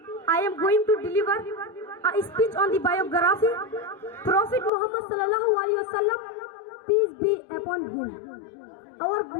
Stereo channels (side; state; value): right; drops out; at 4.7 s